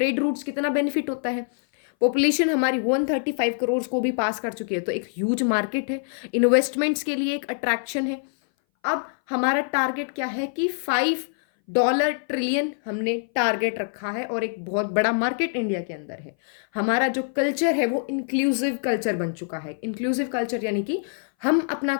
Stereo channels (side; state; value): right; silent; 59 dB below the other